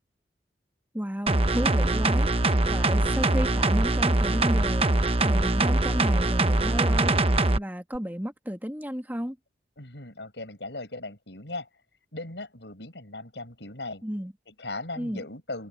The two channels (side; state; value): both; normal; correlation 0.64